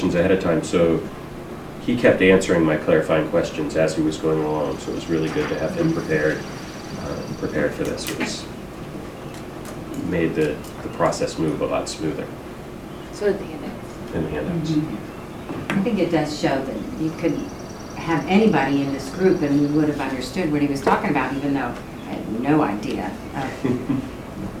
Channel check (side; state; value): both; identical; correlation 1.00